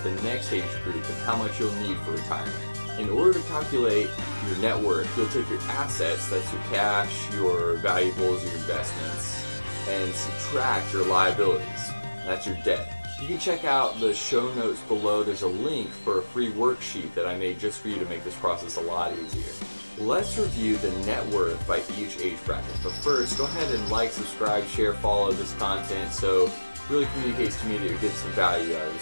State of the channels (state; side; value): inverted; both; correlation -1.00